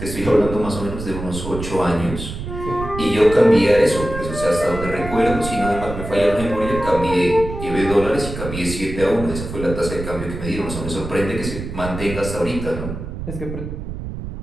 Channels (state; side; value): noise; right; rumble, 8 dB below the sound